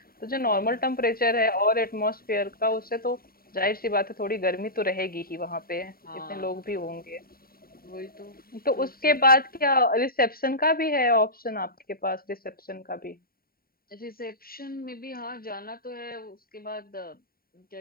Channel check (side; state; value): right; late; 0.43 ms